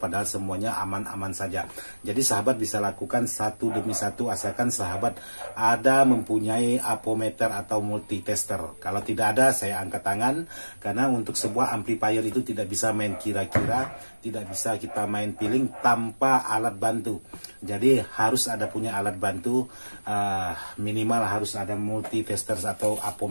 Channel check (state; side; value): inverted; both; correlation -1.00